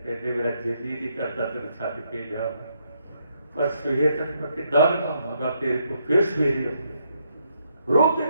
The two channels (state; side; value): inverted; both; correlation -0.75